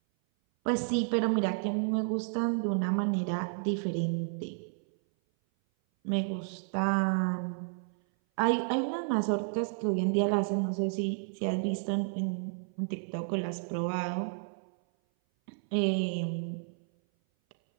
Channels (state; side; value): silent; left; 57 dB below the other